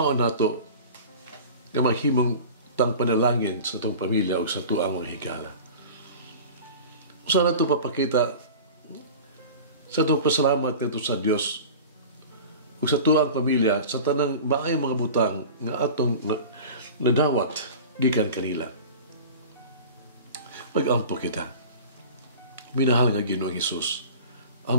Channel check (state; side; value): inverted; both; correlation -0.37